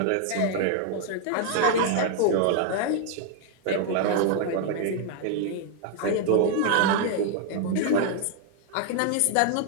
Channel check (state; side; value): different; both; correlation 0.00